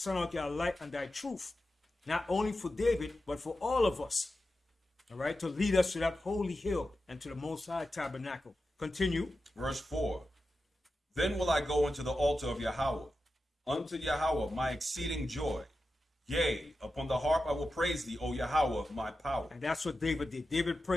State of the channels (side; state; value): both; normal; correlation 0.91